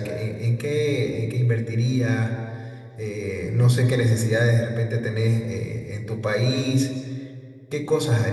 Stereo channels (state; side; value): identical; both; correlation 1.00